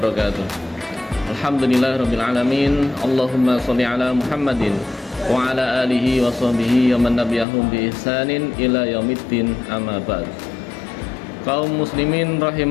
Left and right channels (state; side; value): drops out; right; at 7.5 s